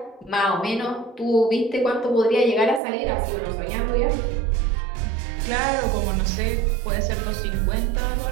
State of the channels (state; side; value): drops out; left; at 2.8 s